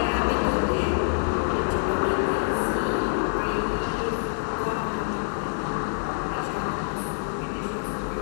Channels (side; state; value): right; silent; digital silence